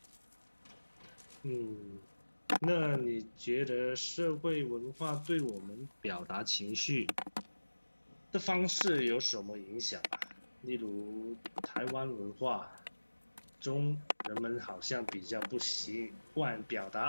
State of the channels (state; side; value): inverted; both; correlation -1.00